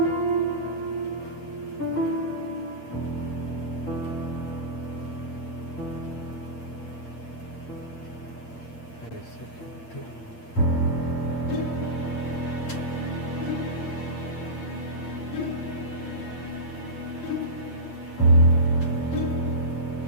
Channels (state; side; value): late; right; 8.7 ms